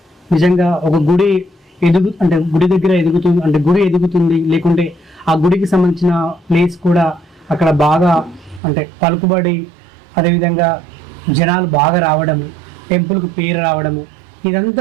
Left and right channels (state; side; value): drops out; left; at 8.6 s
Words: నిజంగా ఒక గుడి గుడి దగ్గర ఎదుగుతుంది అంటే గుడి ఎదుగుతుంది, లేకుంటే ఆ గుడికి సంబంధించిన ప్లేస్ కూడా అక్కడ బాగా అంటే పలుకుబడి, అదేవిధంగా జనాలు బాగా రావడము, టెంపుల్కి పేరు రావడము,